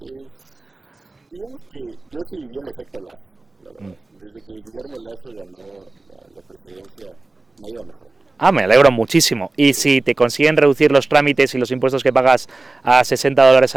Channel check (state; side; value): quieter; left; 3.1 dB